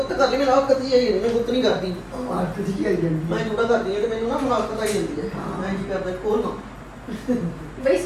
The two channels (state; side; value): identical; both; correlation 1.00